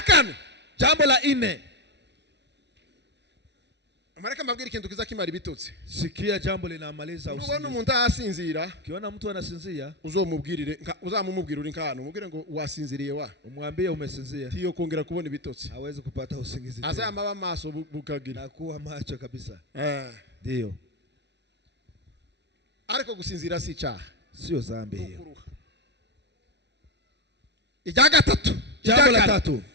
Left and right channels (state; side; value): late; left; 0.50 ms